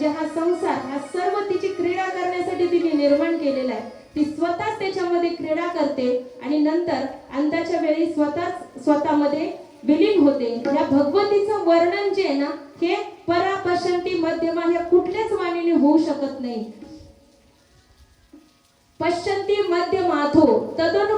हा संसार, हा सर्व तिची क्रीडा करण्यासाठी तिने निर्माण केलेला आहे. ती स्वतःच त्याच्यामध्ये क्रीडा करते आणि नंतर अंताच्या वेळी स्वतःमध्ये विलीन होते. या भगवतीचं वर्णन जे आहे ना, हे परा पश्यंती मध्यमा ह्या कुठल्याच वाणीने होऊ शकत नाही. पश्यंती मध्यमाथो तदनु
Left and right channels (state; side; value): identical; both; correlation 1.00